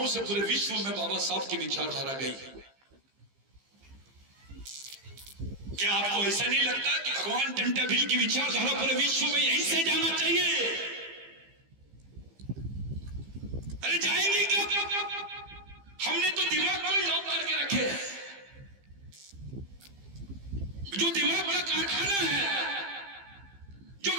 से पूरे विश्व में बाबा साहब की विचारधारा गई। क्या आपको ऐसा नहीं लगता कि भगवान टंटा भील की विचारधारा पूरे विश्व में यहीं से जाना चाहिए? अरे जाएंगे क्या? हमने तो दिमाग को लॉक करके रखे हैं, जो दिमाग का कारखाना है, जो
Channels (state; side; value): late; left; 15 ms